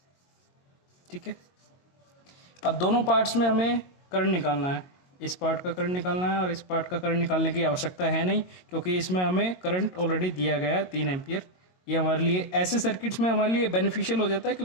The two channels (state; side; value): late; right; 22 ms